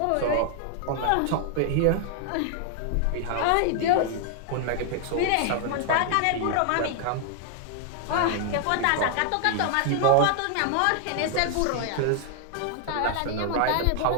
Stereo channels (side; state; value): both; different; correlation 0.00